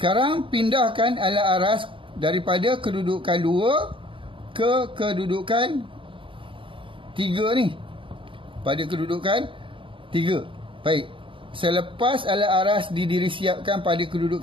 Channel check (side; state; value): left; late; 0.25 ms